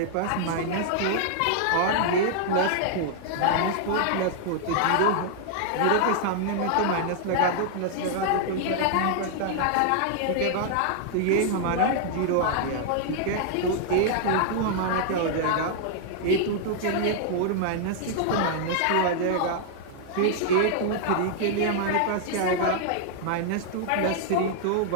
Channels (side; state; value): both; different; correlation -0.01